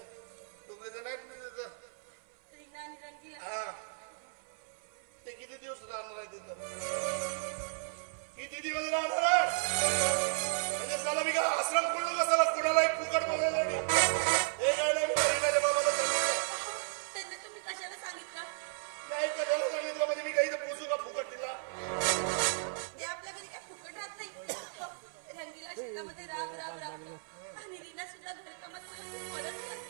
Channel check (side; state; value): left; silent; 55 dB below the other